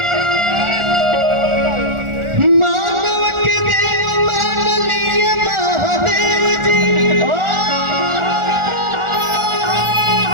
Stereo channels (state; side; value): late; left; 1.4 ms